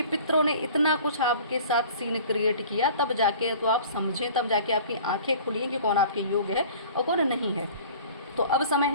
पितरों ने इतना कुछ आपके साथ सीन क्रिएट किया, तब जाके तो आप समझें, तब जाके आपकी आंखें खुली कि कौन आपके योग्य है और कौन नहीं है। तो अब समय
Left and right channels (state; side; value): inverted; both; correlation -0.46